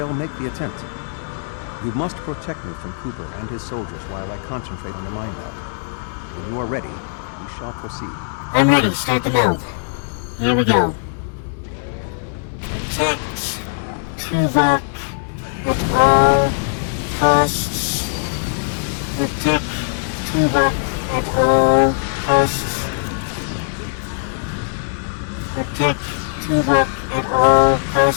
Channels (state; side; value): silent; right; digital silence